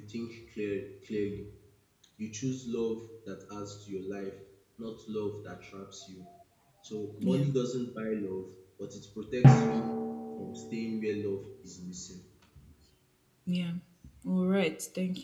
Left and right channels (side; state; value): both; identical; correlation 1.00